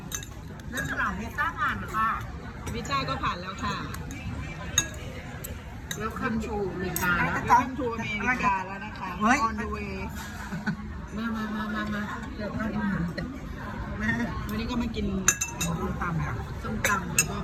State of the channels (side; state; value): both; identical; correlation 1.00